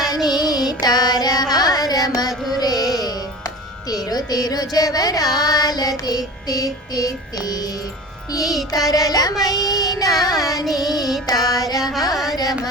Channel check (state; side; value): normal; both; correlation 0.36